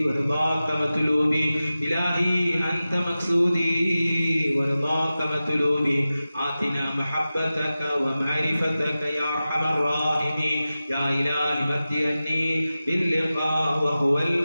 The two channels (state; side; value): inverted; both; correlation -0.95